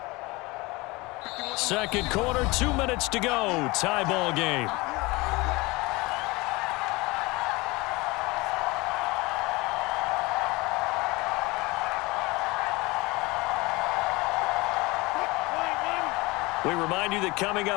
Second quarter, 2 minutes to go. Tie ball game. We remind you that coming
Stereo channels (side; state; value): right; quieter; 23.3 dB